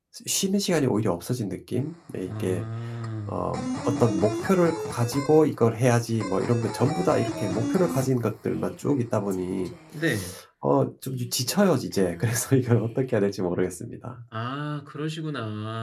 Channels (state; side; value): identical; both; correlation 1.00